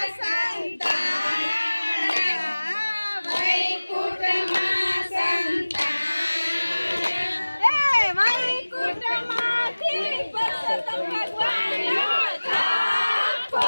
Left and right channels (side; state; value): both; inverted; correlation -1.00